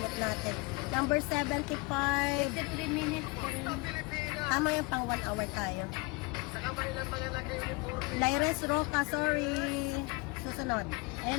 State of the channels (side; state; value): right; quieter; 27.3 dB